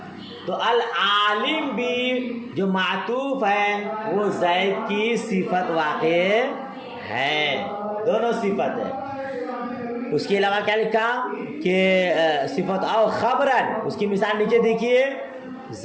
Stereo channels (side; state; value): both; identical; correlation 1.00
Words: تو العالم بھی جو معطوف ہے وہ زید کی صفت واقع ہے، دونوں صفت ہے. اس کے علاوہ کیا لکھا کہ صفت او خبرن، اس کی مثال نیچے دیکھیے